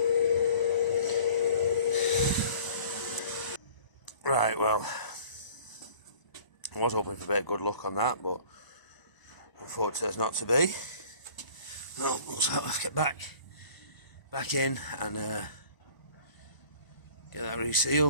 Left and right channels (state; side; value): late; right; 1.0 ms